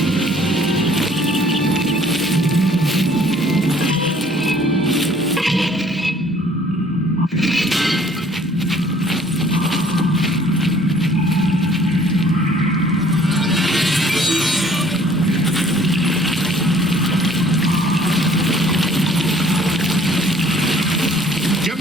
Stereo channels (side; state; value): both; normal; correlation 0.57